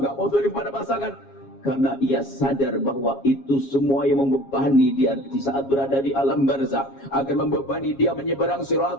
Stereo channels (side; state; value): right; late; 7.3 ms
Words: nggak mau zalim pada pasangan. Karena ia sadar bahwa itu semua yang membebani dia di saat berada di alam barzah, akan membebani dia menyeberang